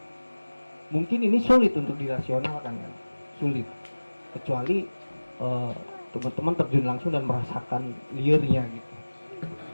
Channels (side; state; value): both; inverted; correlation -1.00